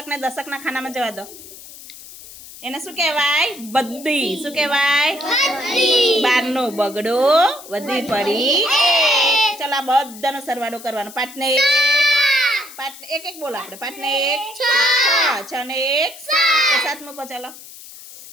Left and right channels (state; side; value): noise; left; hiss, 17 dB below the sound